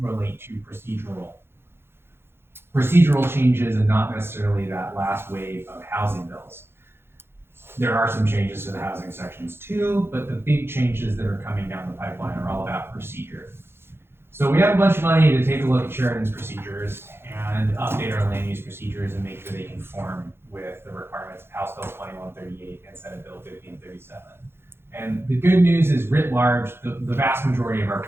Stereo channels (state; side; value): late; left; 0.11 ms